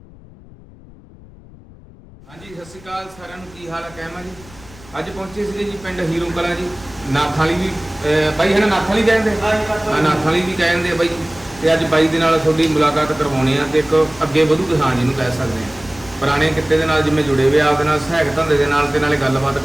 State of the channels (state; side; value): noise; left; rumble, 22 dB below the sound